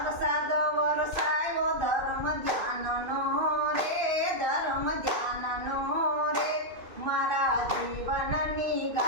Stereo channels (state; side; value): late; left; 2.5 ms